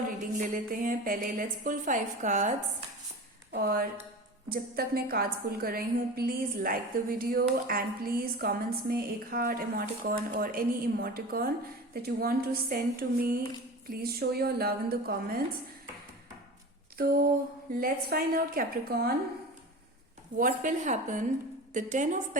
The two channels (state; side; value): normal; both; correlation 0.33